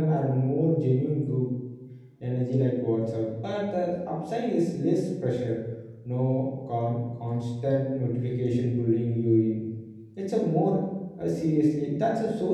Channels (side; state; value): both; identical; correlation 1.00